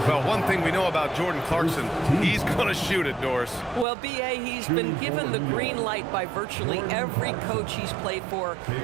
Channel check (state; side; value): drops out; left; at 3.9 s